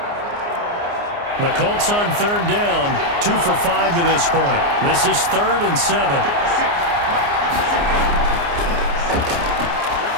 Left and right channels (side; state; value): left; late; 29 ms